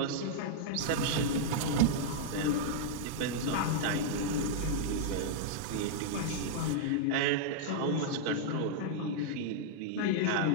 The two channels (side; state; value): both; different; correlation -0.01